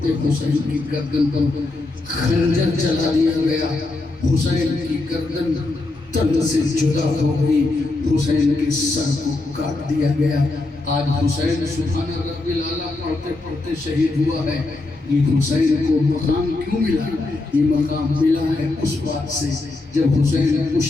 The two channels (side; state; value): right; quieter; 3.2 dB